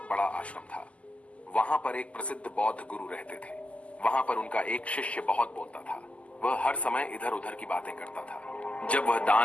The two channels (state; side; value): late; right; 0.064 ms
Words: बड़ा आश्रम था। वहां पर एक प्रसिद्ध बौद्ध गुरु रहते थे। वहां पर उनका एक शिष्य बहुत बोलता था। वह हर समय इधर उधर की बातें करता था। जब वह